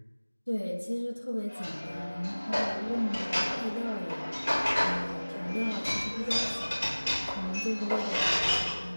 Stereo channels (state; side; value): inverted; both; correlation -1.00